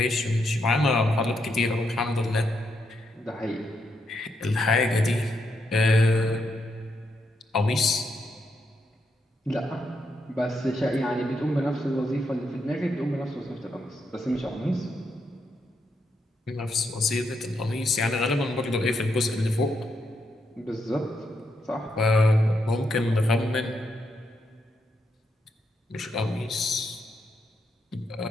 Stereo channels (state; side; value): normal; both; correlation 0.80